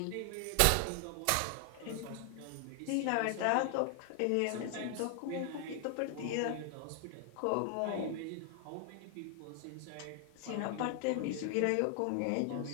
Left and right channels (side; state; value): both; different; correlation 0.00